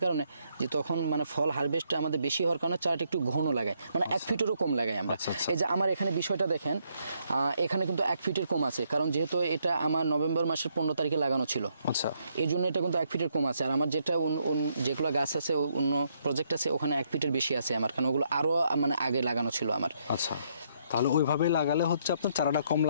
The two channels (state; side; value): inverted; both; correlation -0.73